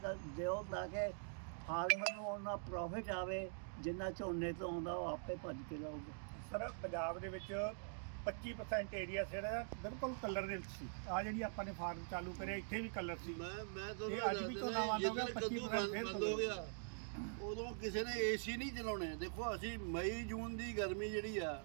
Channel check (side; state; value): left; silent; digital silence